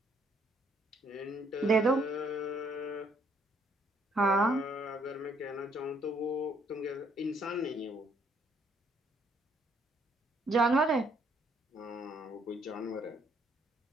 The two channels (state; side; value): normal; both; correlation 0.67